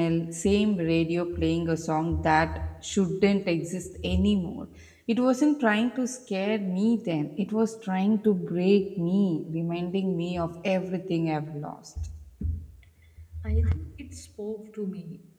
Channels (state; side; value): identical; both; correlation 1.00